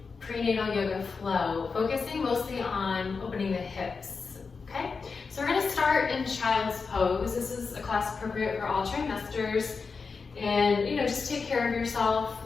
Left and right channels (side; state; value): right; quieter; 4.9 dB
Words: prenatal yoga flow, focusing mostly on opening the hips. Okay, so we're going to start in child's pose. This is a class appropriate for all trimesters, and just take care of yourself,